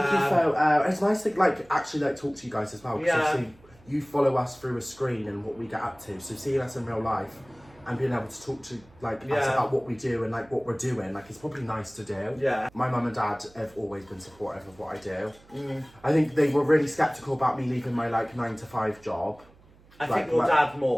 a cheeky photo. It's nice to like actually like talk to you guys as well. Because obviously you follow us through a screen and what we get up to. So seeing us in real life and being able to talk to like us about what we do and like what we're doing, like it's probably nice to do. Yeah. My mum and dad have always been supportive of what I do. I think they were really skeptical about me leaving my like 9-to-5 job. I think your dad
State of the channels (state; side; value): noise; right; hum, 27 dB below the sound